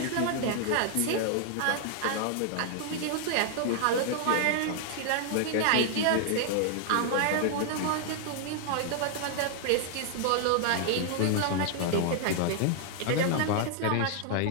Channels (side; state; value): both; different; correlation 0.00